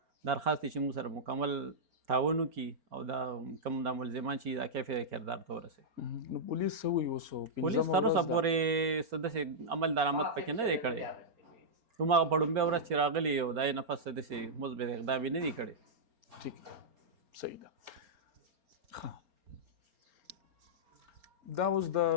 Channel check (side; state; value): left; late; 4.3 ms